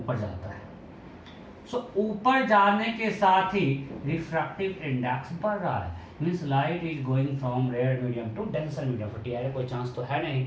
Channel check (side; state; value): both; identical; correlation 1.00